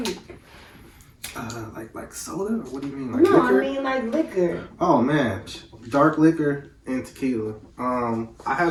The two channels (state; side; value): identical; both; correlation 1.00